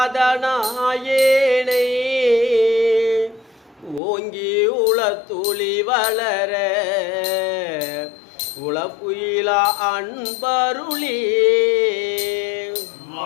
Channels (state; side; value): drops out; right; at 4.0 s